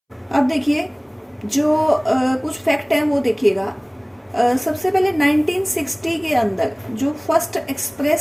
अब देखिए जो कुछ फैक्ट हैं वो देखिएगा। सबसे पहले 1960 के अंदर जो फर्स्ट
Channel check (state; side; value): identical; both; correlation 1.00